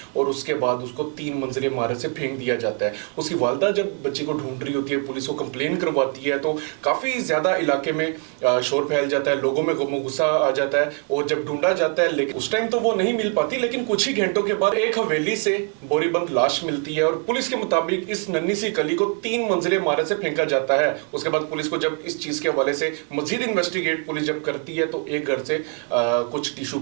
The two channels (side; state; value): left; quieter; 38.5 dB